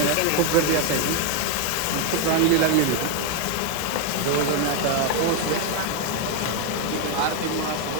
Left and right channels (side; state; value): both; different; correlation 0.01